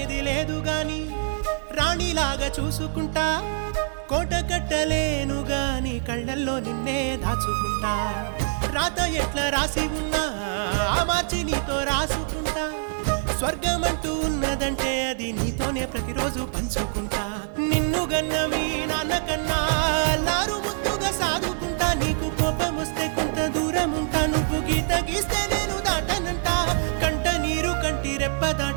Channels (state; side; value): silent; left; digital silence